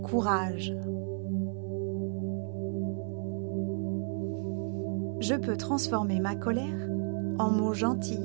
Je peux transformer ma colère en mots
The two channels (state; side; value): silent; left; 56 dB below the other